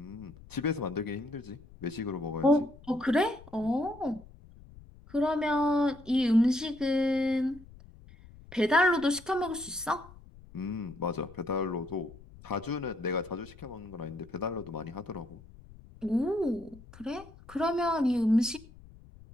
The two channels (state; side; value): noise; left; rumble, 21 dB below the sound